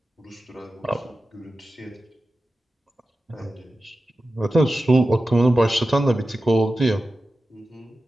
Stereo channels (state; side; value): normal; both; correlation 0.93